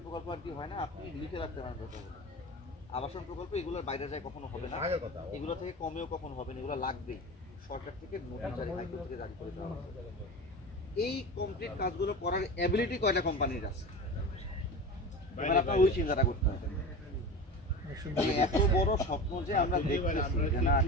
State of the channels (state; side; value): normal; both; correlation 0.29